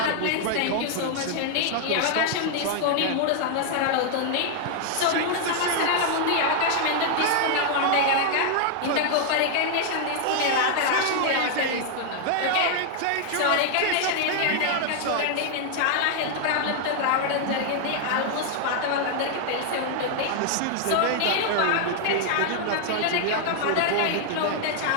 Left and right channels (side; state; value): both; different; correlation 0.00